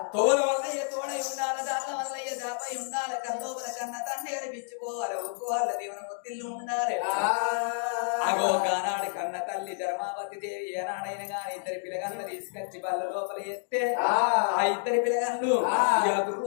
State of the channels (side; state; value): right; silent; digital silence